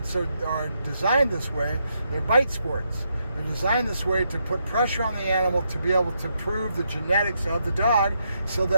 are designed this way. They're bite sports. They're designed this way to put pressure on the animal to be able to prove the genetics of the dog so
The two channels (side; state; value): both; inverted; correlation -0.79